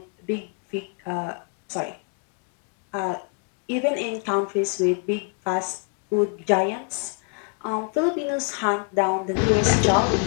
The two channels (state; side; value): quieter; right; 37.0 dB